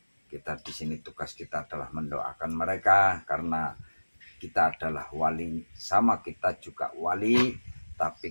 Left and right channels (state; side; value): inverted; both; correlation -1.00